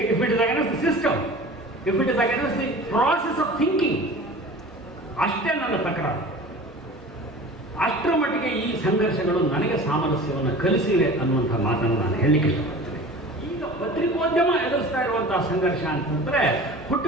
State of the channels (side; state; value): both; normal; correlation 0.39